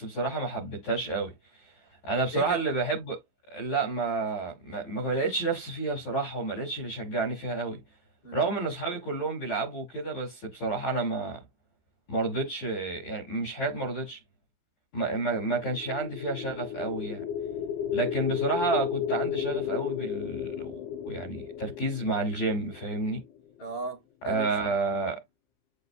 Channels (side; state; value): right; late; 15 ms